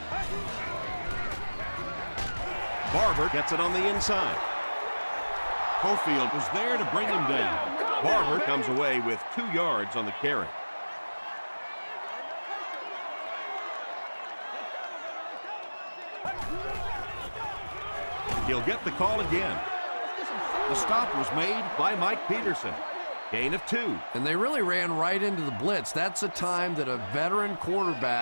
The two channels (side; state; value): both; inverted; correlation -1.00